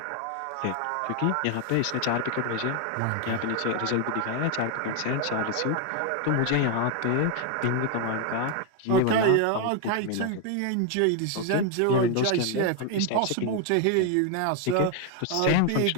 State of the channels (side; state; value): both; different; correlation 0.01